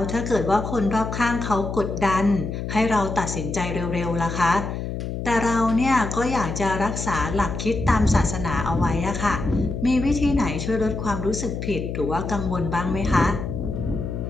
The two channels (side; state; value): left; noise; hum, 5 dB below the sound